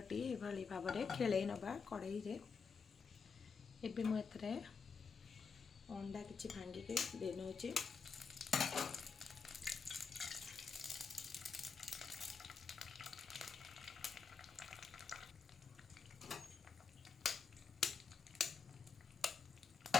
ଏଭଳି ଭାବରେ ଖେଳେଇ ନେବା କଡ଼େଇରେ। ଏବେ ମୁଁ ଏଥିରେ ଅଣ୍ଡା କିଛି ଭାଙ୍ଗିକି ଦେଇ ନେଉଛି।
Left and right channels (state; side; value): quieter; right; 5.5 dB